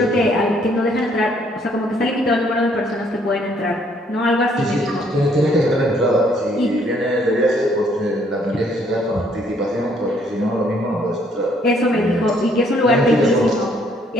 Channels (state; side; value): normal; both; correlation 0.66